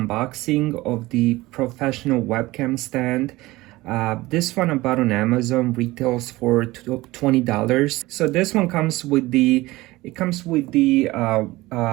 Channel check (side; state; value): left; quieter; 19.4 dB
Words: of the professional webcam stand. This one I bought on Amazon, retails for $20. So this one comes with the